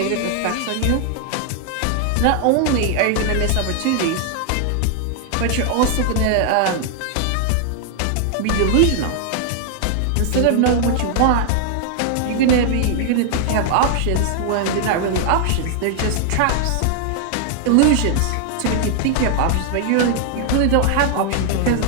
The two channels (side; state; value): both; different; correlation 0.00